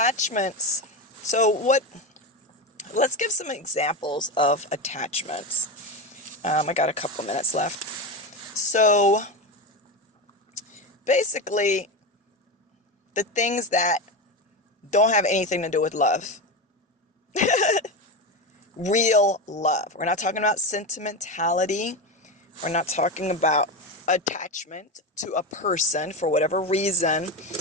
Let's give some examples of attachments. I got a couple minutes left. So basically, the things that don't have anything to do with love. Real love. We're not talking about sentimentality. We're not talking about attachment to a person for whatever reason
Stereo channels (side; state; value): both; normal; correlation 0.18